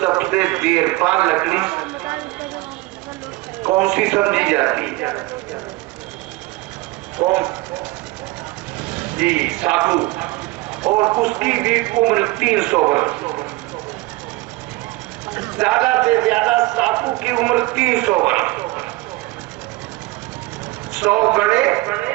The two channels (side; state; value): left; quieter; 20.6 dB